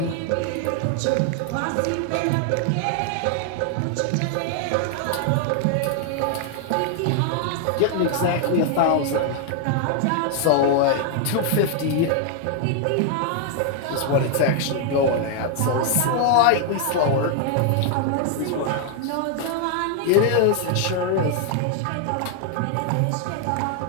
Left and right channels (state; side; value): different; both; correlation 0.00